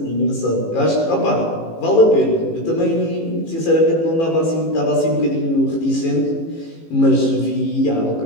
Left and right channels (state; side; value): late; right; 18 ms